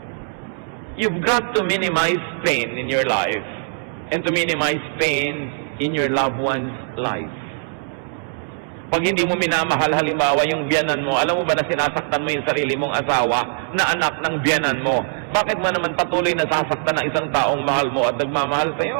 You've got to minimize pain in your life and to minimize pain in your loved one's life. Pag hindi mo minamahal halimbawa yung biyanan mo, alam mo ba na sinasaktan mo yung sarili mong asawa na anak ng biyanan mo? Bakit mo naman patuloy na sasaktan ng isang taong mahal mo at nagmamahal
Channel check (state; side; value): silent; left; digital silence